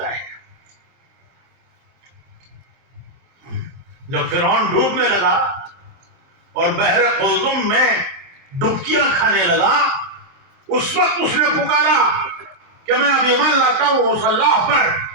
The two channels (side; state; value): left; late; 24 ms